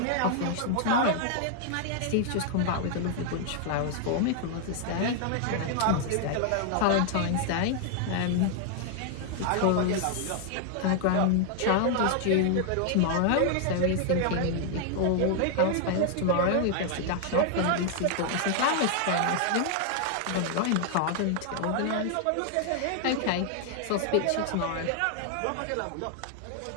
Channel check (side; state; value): both; different; correlation 0.00